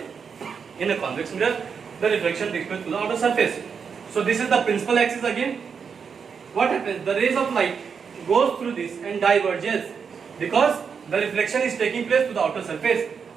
in a convex mirror, the reflection takes place to the outer surface. So this is the principal axis again. What happens? The rays of light goes through this and diverges because the reflection is taking place to the outer surface.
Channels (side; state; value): left; quieter; 6.3 dB